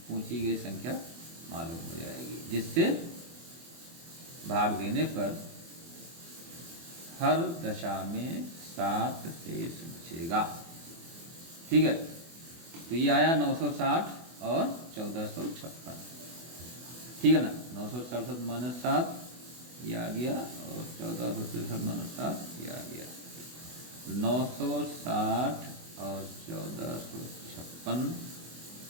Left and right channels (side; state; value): left; late; 24 ms